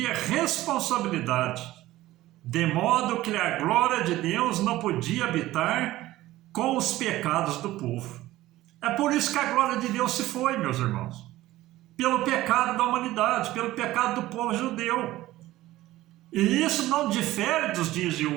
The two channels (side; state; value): left; quieter; 16.2 dB